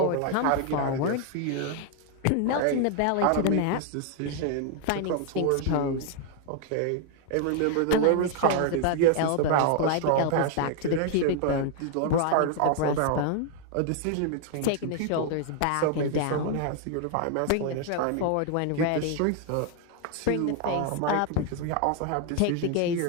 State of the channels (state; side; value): different; both; correlation 0.00